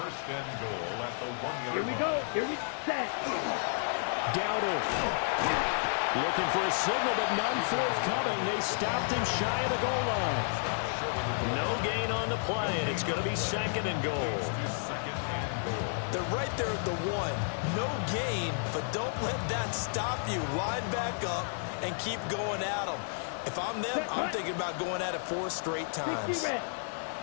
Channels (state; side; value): silent; right; 57 dB below the other